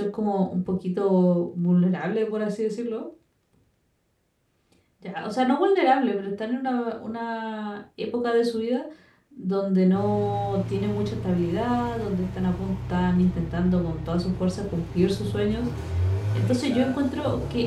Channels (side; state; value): both; identical; correlation 1.00